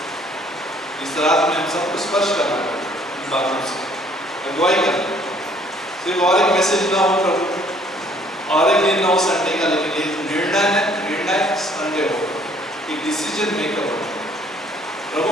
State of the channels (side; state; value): both; normal; correlation 0.61